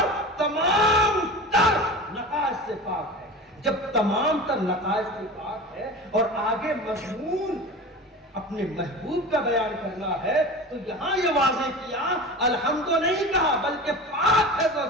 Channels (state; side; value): normal; both; correlation 0.33